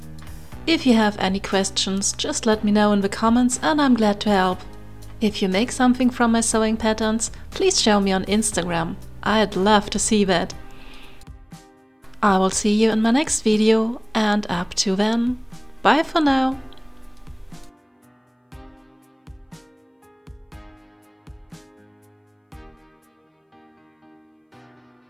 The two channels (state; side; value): identical; both; correlation 1.00